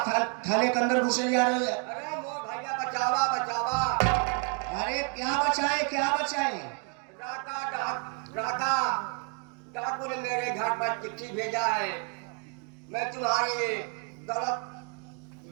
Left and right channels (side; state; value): left; quieter; 39.7 dB